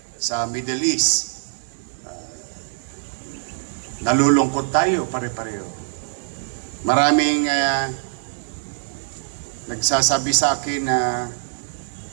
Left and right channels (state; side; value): silent; left; digital silence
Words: sa Middle East. Nalulungkot tayo pare-pareho. Maraming nagsasabi sa akin na